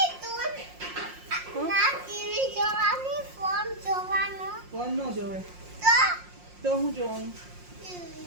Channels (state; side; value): late; left; 5.6 ms